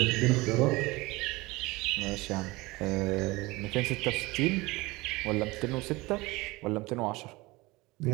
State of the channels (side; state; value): left; quieter; 22.1 dB